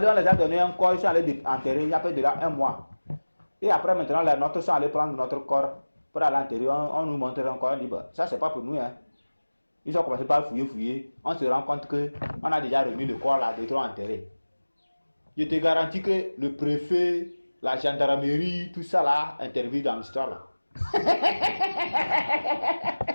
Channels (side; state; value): both; inverted; correlation -1.00